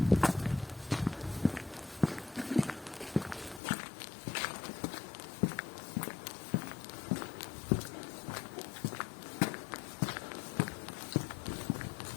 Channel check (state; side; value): drops out; right; at 3.6 s